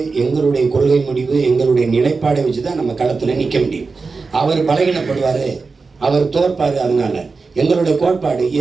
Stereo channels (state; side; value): quieter; left; 4.4 dB